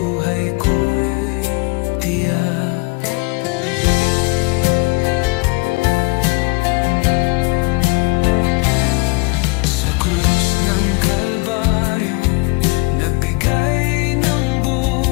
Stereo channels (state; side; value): quieter; right; 27.8 dB